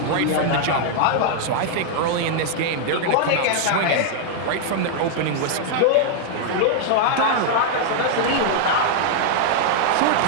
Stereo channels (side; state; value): both; different; correlation -0.01